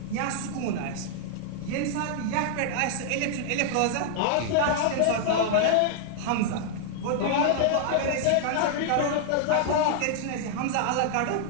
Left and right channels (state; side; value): different; both; correlation -0.01